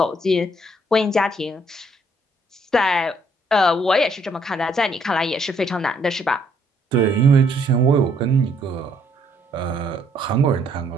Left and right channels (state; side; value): normal; both; correlation 0.68